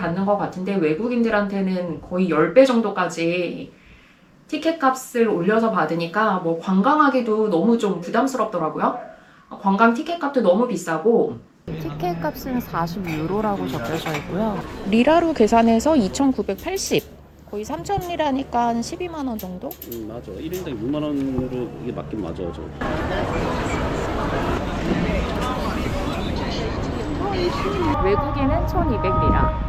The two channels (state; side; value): identical; both; correlation 1.00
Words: 것 같은데 외국인들한테는 거의 10배 정도까지 티켓 값을 올려서 받으니까 뭐 관광하기도 너무 좀 부담스럽더라고요. 관광 티켓 값도 너무 비싸고 티켓 값은 40유로라고 적혀져 있고요. 리라로 계산해서 2,980. 거의 3,000리라니까 12만 원 정도? 맞아. 1인당 6만 원으로 이게 맞긴 맞아. 저. 외국인은